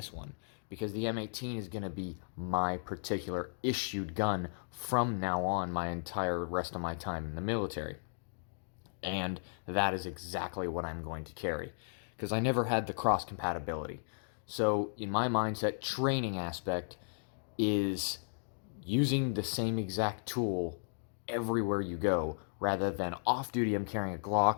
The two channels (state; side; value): silent; right; digital silence